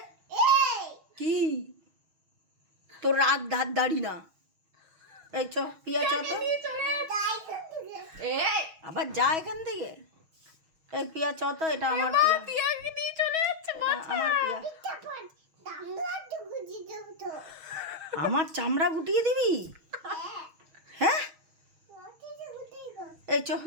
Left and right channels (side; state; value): left; late; 6.2 ms